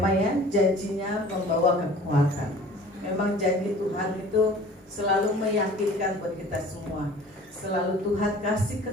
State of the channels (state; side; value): normal; both; correlation 0.46